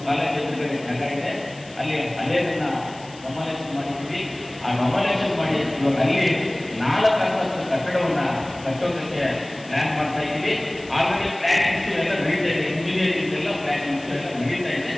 ಕಾಲೇಜ್ ಎದುರುಗಡೆ ಜಾಗ ಇದೆ, ಅಲ್ಲಿ ಹಳೆಯದನ್ನ ಕಮಲೇಷನ್ ಮಾಡಿದ್ದೀವಿ. ಆ ಕಮಲೇಷನ್ ಮಾಡಿ ಇವಾಗ ಅಲ್ಲಿ 4 ಅಂತಸ್ತು ಕಟ್ಟಡವನ್ನು ಕಟ್ಟೋದಕ್ಕೆ ಪ್ಲ್ಯಾನ್ ಮಾಡ್ತಾ ಇದ್ದೀವಿ. ಆಲ್ರೆಡಿ ಪ್ಲ್ಯಾನಿಂಗ್ಸು ಎಲ್ಲ ನಡೀತಾ ಇದೆ. ಇಂಜಿನಿಯರಿಂಗ್ ಎಲ್ಲ ಪ್ಲ್ಯಾನಿಂಗ್ಸು ಎಲ್ಲ ನಡೀತಾ ಇದೆ.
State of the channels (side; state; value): left; noise; hiss, 22 dB below the sound